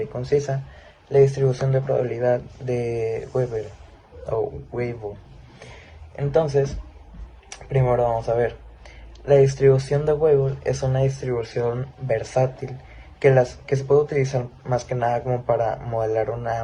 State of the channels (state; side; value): identical; both; correlation 1.00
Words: y concisa la distribución de probabilidad de Weber o Weibull. Entonces, primero vamos a ver. La distribución de Weibull es una distribución versátil que se puede utilizar más que nada como para modelar una